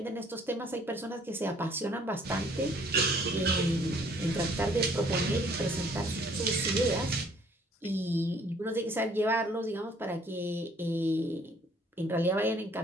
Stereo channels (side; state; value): both; normal; correlation 0.60